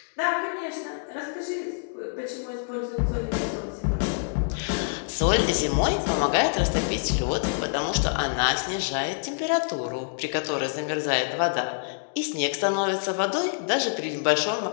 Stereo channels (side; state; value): right; silent; digital silence